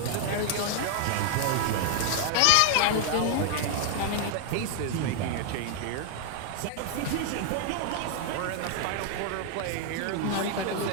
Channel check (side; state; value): both; different; correlation 0.00